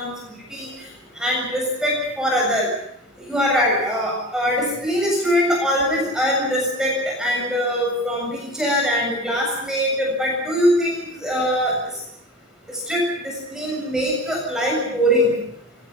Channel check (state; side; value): normal; both; correlation 0.34